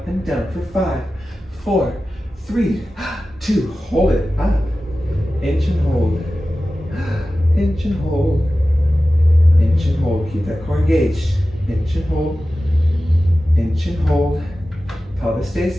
and down for 5, 4, 3, 2. Hold it up. Inch and hold. Inch and hold. Inch and hold. Keep that core engaged. Inch and hold. Inch and hold. Pelvis stays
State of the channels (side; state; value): both; normal; correlation 0.95